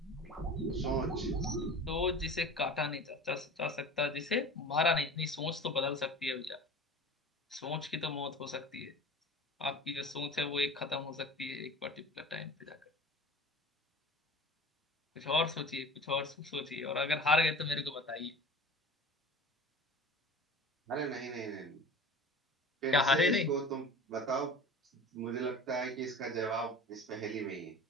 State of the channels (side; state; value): both; normal; correlation 0.38